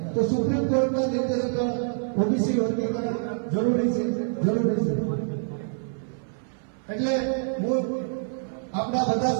તો સુપ્રીમ કોર્ટના નિર્દેશ પર ઓબીસી વર્ગીકરણ જરૂરી છે. એટલે હું આપણા બધા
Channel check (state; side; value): silent; left; 57 dB below the other